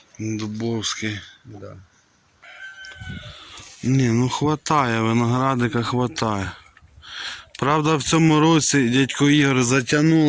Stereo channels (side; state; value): both; identical; correlation 1.00